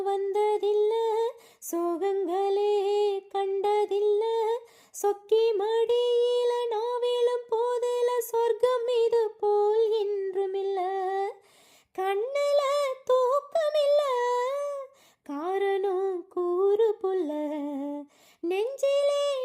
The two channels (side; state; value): both; identical; correlation 1.00